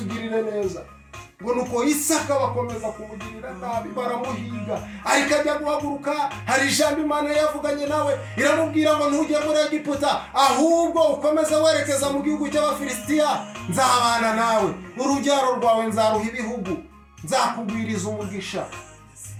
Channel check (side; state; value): both; identical; correlation 1.00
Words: neza. Ngo nuko Isaka bakomeza kumugirira nabi, baramuhiga, ariko ajya guhaguruka. Hari ijambo Imana yavuganye nawe, iramubwira ngo ntujye muri Egiputa, ahubwo ukomeze werekeza mu gihugu cy'Abafilisitiya, nzabana nawe, urubyaro rwawe nzaruha ibihugu, nzakugwiriza umugisha.